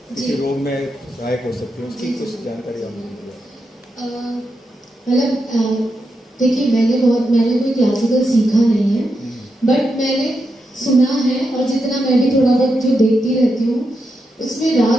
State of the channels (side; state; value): both; normal; correlation 0.85